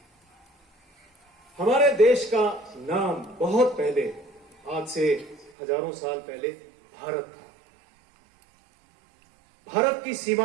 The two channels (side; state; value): left; drops out; at 5.5 s